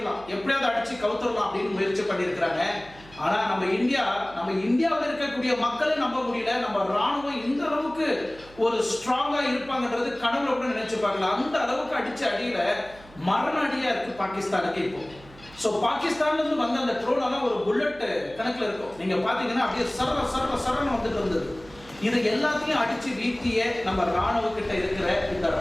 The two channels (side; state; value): right; noise; hum, 22 dB below the sound